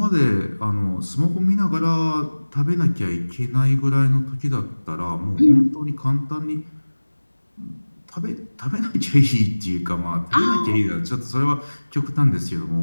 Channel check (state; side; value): inverted; both; correlation -1.00